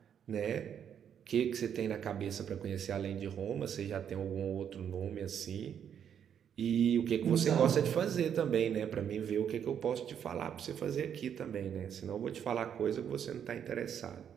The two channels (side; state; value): left; quieter; 8.6 dB